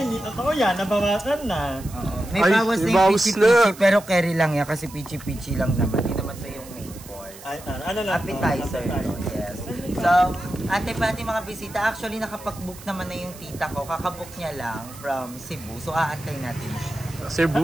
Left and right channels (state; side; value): noise; right; hiss, 18 dB below the sound